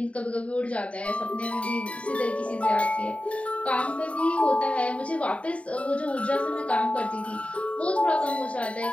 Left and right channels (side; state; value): right; late; 0.063 ms